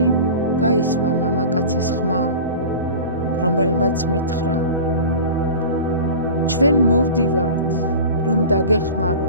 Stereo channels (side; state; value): both; inverted; correlation -0.34